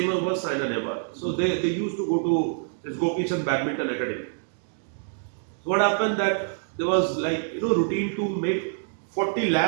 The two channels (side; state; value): left; silent; digital silence